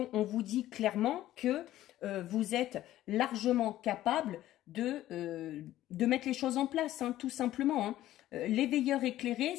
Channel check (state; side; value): quieter; right; 14.1 dB